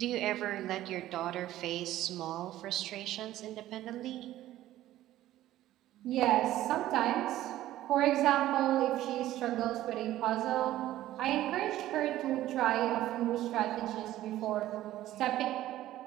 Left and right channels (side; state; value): left; quieter; 14.3 dB